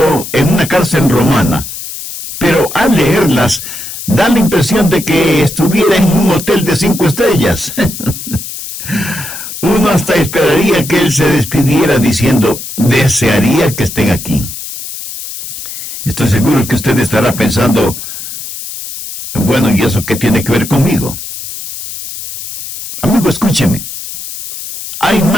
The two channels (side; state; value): left; noise; hiss, 10 dB below the sound